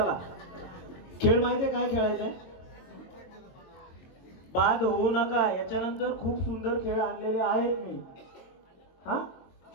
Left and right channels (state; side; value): late; right; 22 ms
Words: खेळ माहितीये काय खेळायचंय. बाद होऊ नका. याच्यानंतर खूप सुंदर खेळ आणलेले आहेत मी. हा